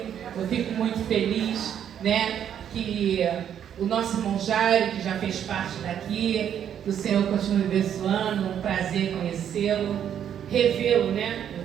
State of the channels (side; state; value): left; quieter; 9.3 dB